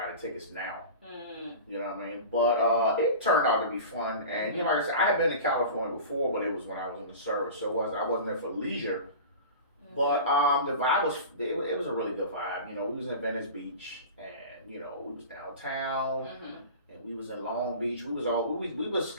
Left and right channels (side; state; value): both; inverted; correlation -0.34